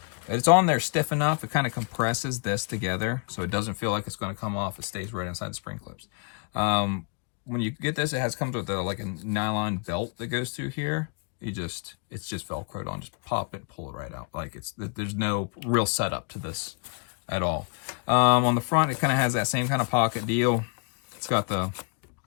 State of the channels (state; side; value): quieter; right; 39.1 dB